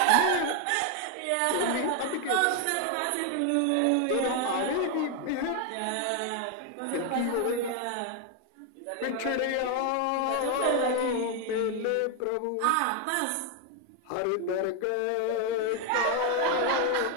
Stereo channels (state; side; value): different; both; correlation 0.01